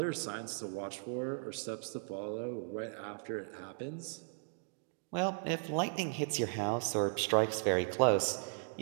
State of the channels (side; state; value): left; silent; digital silence